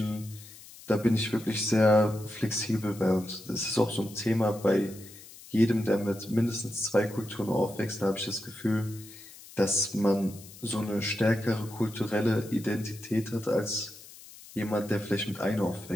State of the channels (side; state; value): left; noise; hiss, 19 dB below the sound